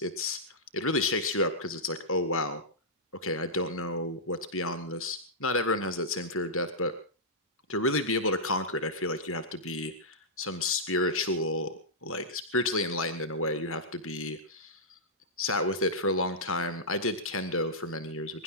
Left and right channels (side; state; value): both; normal; correlation -0.13